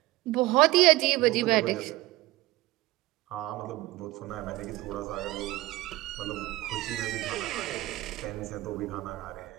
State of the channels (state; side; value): quieter; left; 18.5 dB